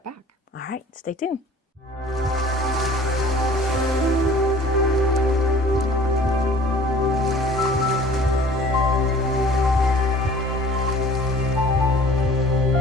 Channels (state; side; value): normal; both; correlation 0.49